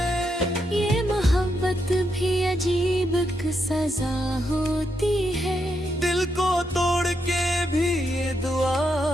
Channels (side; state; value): both; normal; correlation 0.81